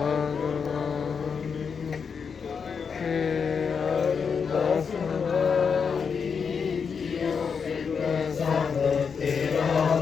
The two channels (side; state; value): right; quieter; 6.1 dB